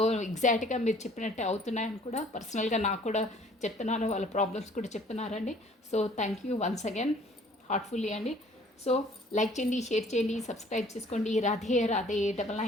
ఎగ్జాక్ట్గా మీరు చెప్పినట్టే అవుతున్నాయని కూడా పర్సనల్గా నాకు కూడా చెప్తున్నారు, వాళ్ళ ప్రాబ్లమ్స్ కూడా చెప్తున్నారండి. So thank you once again heartfully అండి. సో లైక్ చేయండి, షేర్ చేయండి, సబ్స్క్రైబ్ చేసుకోండి. రాధే రాధే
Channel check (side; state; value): both; normal; correlation 0.55